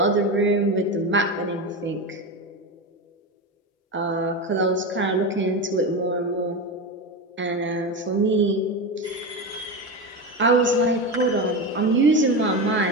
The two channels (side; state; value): both; normal; correlation 0.19